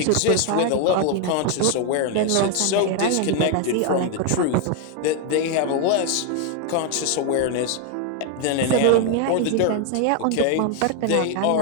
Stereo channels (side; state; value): both; different; correlation 0.01